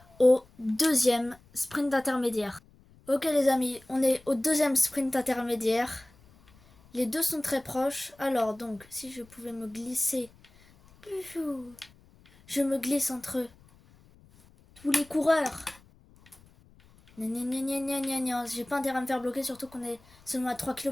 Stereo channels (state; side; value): noise; left; rumble, 27 dB below the sound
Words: au deuxième sprint intermédiaire. Ok les amis, on est au deuxième sprint intermédiaire. Les deux sont très proches. Alors donc, si je pouvais me glisser... Je me glisse entre tous les coureurs. J'ai pas intérêt à me faire bloquer, surtout qu'on est seulement à 3